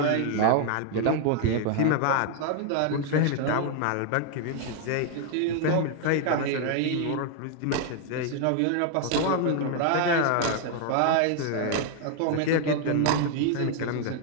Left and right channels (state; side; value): different; both; correlation 0.00